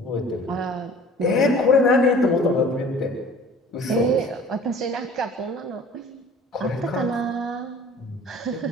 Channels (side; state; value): both; normal; correlation 0.46